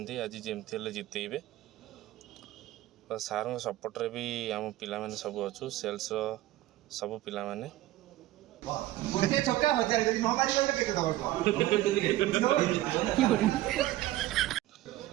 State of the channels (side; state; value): left; quieter; 15.7 dB